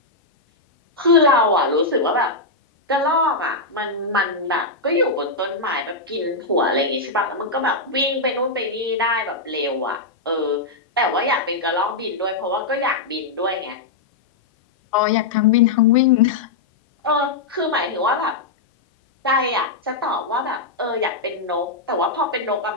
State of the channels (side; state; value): right; quieter; 3.5 dB